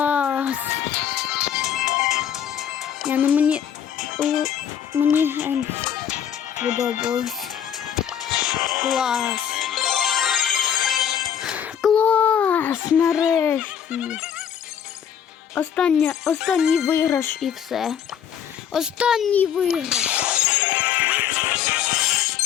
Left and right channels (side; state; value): right; quieter; 8.9 dB